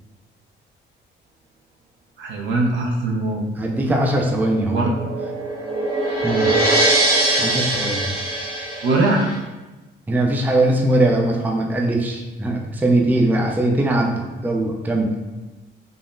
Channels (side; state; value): both; normal; correlation 0.55